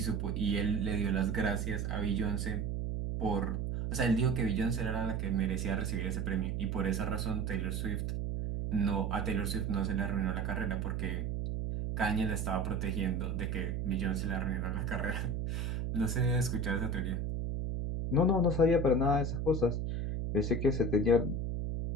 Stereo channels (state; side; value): noise; right; hum, 1 dB below the sound